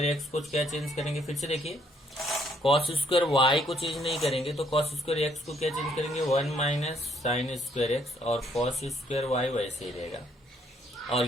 x को क्या चेंज करेंगे, फिर से देखिए cos स्क्वायर y को चेंज नहीं करेंगे तो cos स्क्वायर x को क्या चेंज करेंगे, 1 माइनस साइन स्क्वायर x, और cos स्क्वायर y वैसे ही रहेगा।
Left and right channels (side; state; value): both; normal; correlation 0.68